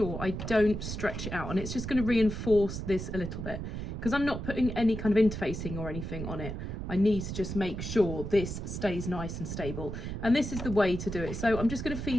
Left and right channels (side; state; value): right; noise; rumble, 6 dB below the sound